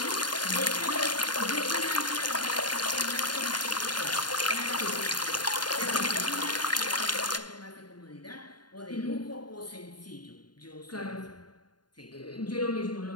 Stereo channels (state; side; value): late; right; 0.71 ms